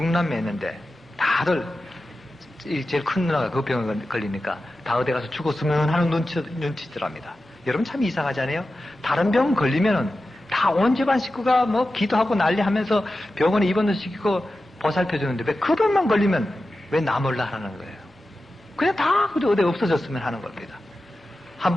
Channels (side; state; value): both; normal; correlation 0.93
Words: 다들 제일 큰 누나가 그 병에 걸리니까 다 어디 가서 죽었으면 하는 눈치더랍니다. 여러분 참 이상하지 않아요? 다른 병 걸리면은 다 온 집안 식구가 뭐 기도하고 난리하면서 병원에 입원도 시키고 보살펴주는데 왜 그 병만 걸리면 왜 나 몰라 하는 거예요? 그냥 다 어디 없어졌으면 하는 겁니다. 한